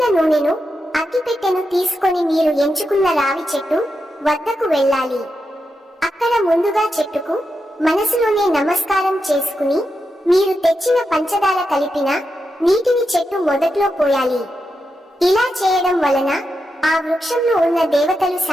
నూనెను, అగ్గిపెట్టెను తీసుకొని మీరు ఎంచుకున్న రావి చెట్టు వద్దకు వెళ్ళాలి. అక్కడ ముందుగా చెట్టుకు మనసులోనే నమస్కారం చేసుకుని మీరు తెచ్చిన పంచదార కలిపిన నీటిని చెట్టు మొదట్లో పోయాలి. ఇలా చేయడం వలన ఆ వృక్షంలో ఉన్న దేవతలు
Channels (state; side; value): normal; both; correlation 0.87